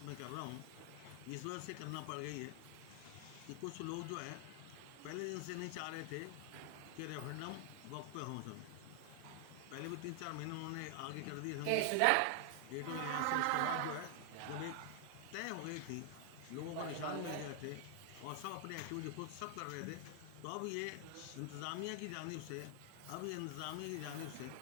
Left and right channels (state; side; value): different; both; correlation 0.00